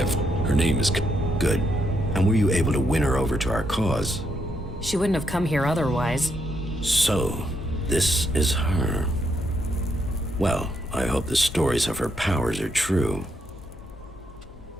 Her name is... Good. And were you able to win her over to our cause? She wouldn't have come here otherwise. So, this is her. Well, I hope the stories of her powers are true.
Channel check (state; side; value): normal; both; correlation 0.77